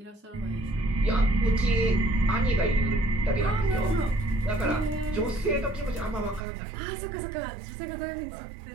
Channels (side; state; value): left; drops out; at 6.4 s